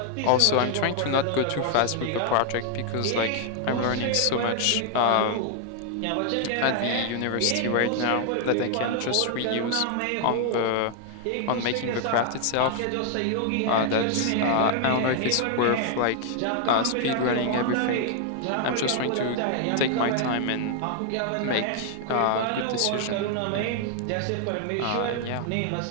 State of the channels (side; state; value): both; different; correlation 0.00